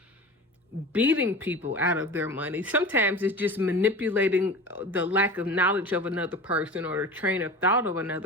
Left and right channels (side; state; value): both; normal; correlation 0.34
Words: beating people out of their money. Sometimes it's just manipulating the lack of knowledge of another person or the train of thought of